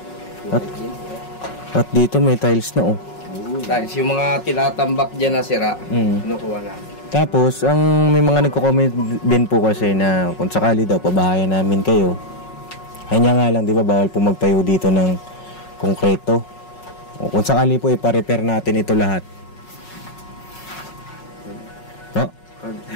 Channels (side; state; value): right; late; 5.4 ms